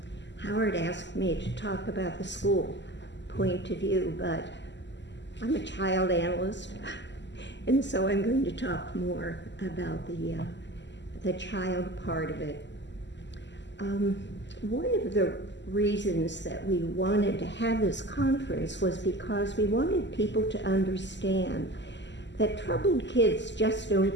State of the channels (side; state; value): right; late; 0.52 ms